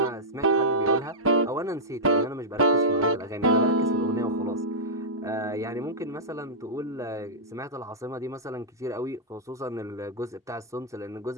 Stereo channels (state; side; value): normal; both; correlation -0.11